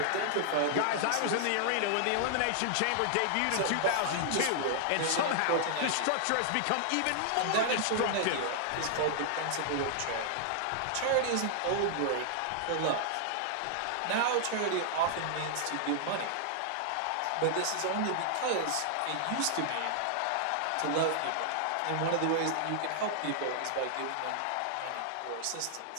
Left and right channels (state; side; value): different; both; correlation -0.01